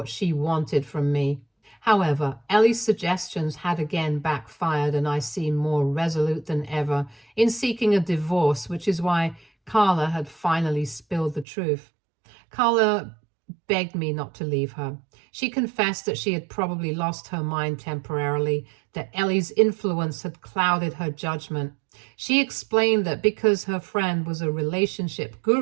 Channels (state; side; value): drops out; left; at 11.5 s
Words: she wanted from me. However, Elle's suggestions had again backfired, and I seemed more resolute than ever in seeking a divorce, which is why Carla had finally spilled the truth. Carla begged me not to leave her. She confessed that she had probably lost her mind temporarily, that Elle's influence had clouded her judgment. She explained that because her friend was a relationship